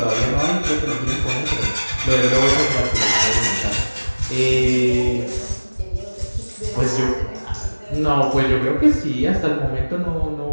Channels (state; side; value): inverted; both; correlation -1.00